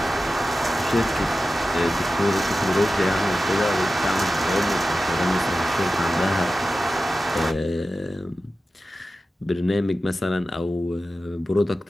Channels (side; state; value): both; normal; correlation 0.93